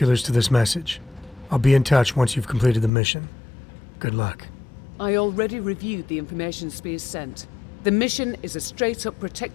to this message. I'll be in touch once you've completed the mission. Good luck. I already reviewed the information Spears sent. The mission is a straight-up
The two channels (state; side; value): drops out; right; at 2.9 s